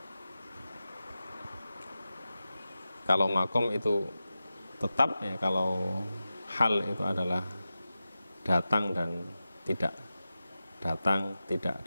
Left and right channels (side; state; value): both; inverted; correlation -0.94